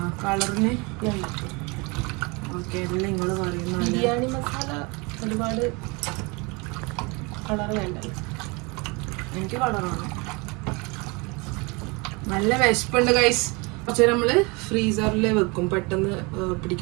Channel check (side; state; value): left; quieter; 28.1 dB